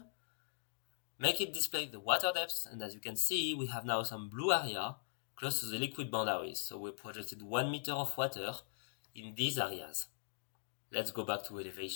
Make it display the water depth, and as you can see, we have now some blue area close to the liquid boundaries. So we projected 1 meter of water in these areas. Let's go back to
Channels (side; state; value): right; silent; digital silence